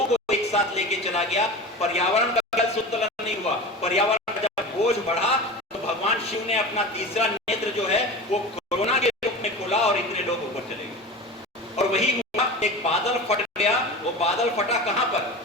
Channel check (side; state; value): both; normal; correlation 0.31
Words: को एक साथ लेके चला गया, पर्यावरण का कल संतुलन नहीं हुआ। पर्यावरण का जब बोझ बढ़ा तो भगवान शिव ने अपना तीसरा नेत्र जो है वो कोरोना के रूप में खोला, और इतने लोग ऊपर चले गए। और वही हुआ, एक बादल फट गया। वो बादल फटा कहां पर?